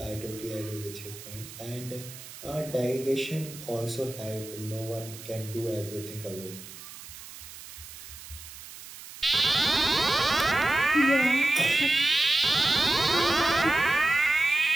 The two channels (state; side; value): noise; right; hiss, 15 dB below the sound